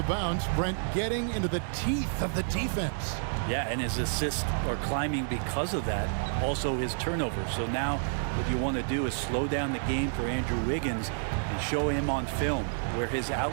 bounce. Brent getting into the teeth of the defense. Yeah, and his assists are climbing because of that. Also his turnovers. So now what you want to do is slow down the game for Andrew Wiggins and show him on film where his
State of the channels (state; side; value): silent; left; digital silence